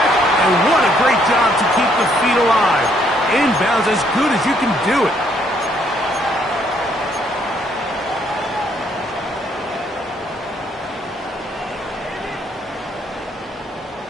and what a great job to keep the feet alive. Inbounds as good as you can do it.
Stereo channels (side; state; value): both; normal; correlation 0.68